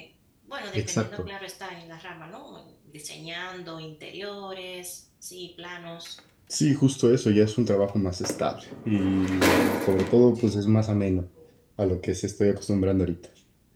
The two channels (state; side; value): identical; both; correlation 1.00